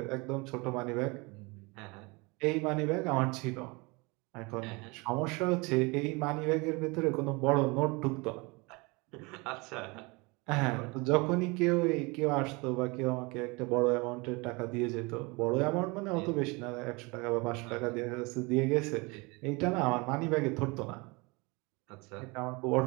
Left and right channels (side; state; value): left; quieter; 26.7 dB